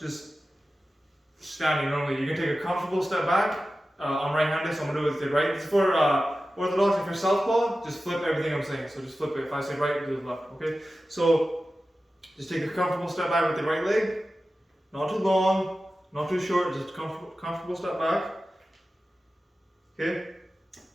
standing normally. You can take a comfortable step back. I'm right-handed, so I'm going to do it with the right. This is for orthodox. If you're southpaw, just flip everything I'm saying. So just flip it. If I say right, do the left. Okay? So just take a comfortable step back with the right leg. Not too long, not too short. Just comfortable step back. Okay?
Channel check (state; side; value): normal; both; correlation 0.94